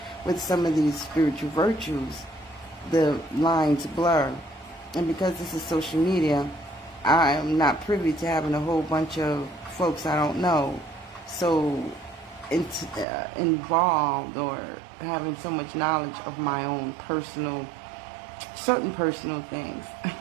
with some of these spiritual virtues, the lines blur. And because this is social media, I am not privy to having a whole bunch of folks I don't know so involved, or having so much knowledge of my own certain personal things.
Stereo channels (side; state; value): left; drops out; at 13.1 s